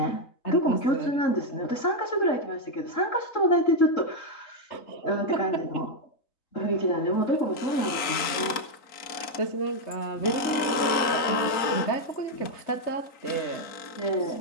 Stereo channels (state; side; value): late; right; 4.3 ms